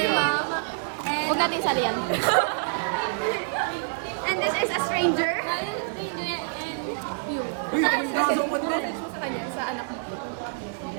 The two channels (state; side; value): silent; left; digital silence